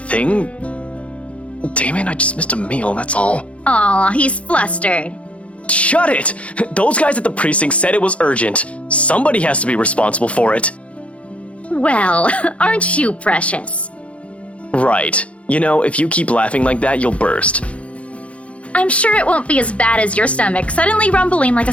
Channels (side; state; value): right; late; 0.063 ms